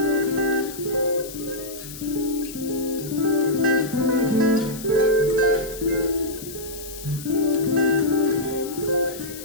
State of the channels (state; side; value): noise; left; hiss, 13 dB below the sound